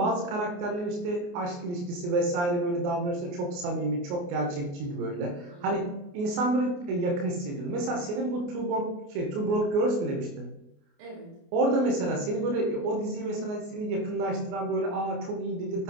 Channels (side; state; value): left; late; 28 ms